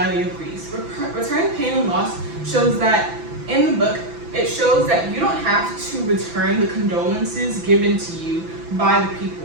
of grief. Return pain and loss shows that in the book, it shows that you don't have to return the condolences given to you by the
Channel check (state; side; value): late; left; 6.0 ms